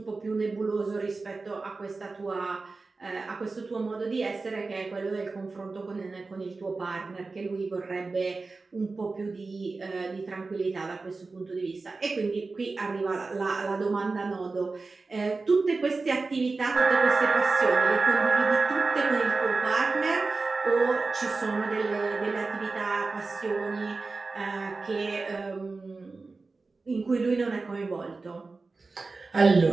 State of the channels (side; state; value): left; quieter; 3.8 dB